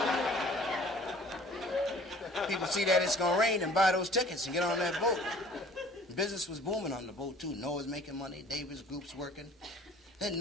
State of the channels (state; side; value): normal; both; correlation 0.51